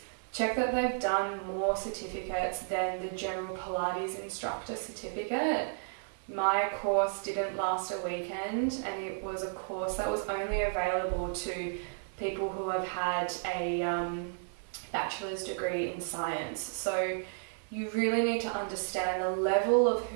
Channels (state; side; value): silent; left; 56 dB below the other